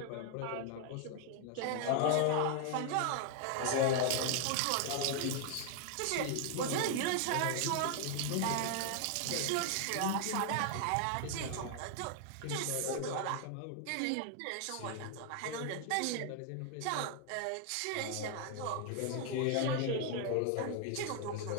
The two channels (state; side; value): different; both; correlation 0.00